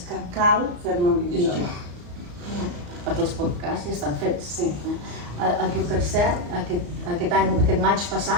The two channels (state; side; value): late; left; 34 ms